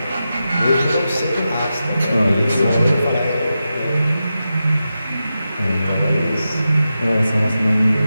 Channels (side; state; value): both; inverted; correlation -0.90